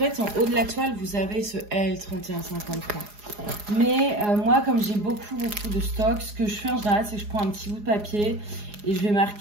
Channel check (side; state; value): left; late; 4.8 ms